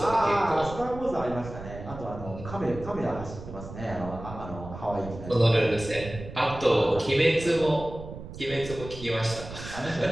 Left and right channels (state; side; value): noise; right; rumble, 12 dB below the sound